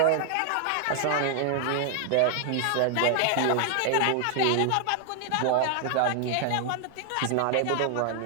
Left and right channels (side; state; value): both; different; correlation 0.00